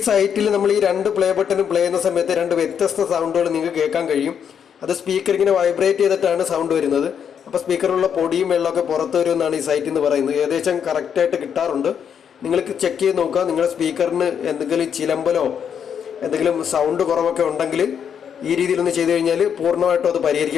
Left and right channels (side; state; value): right; quieter; 7.9 dB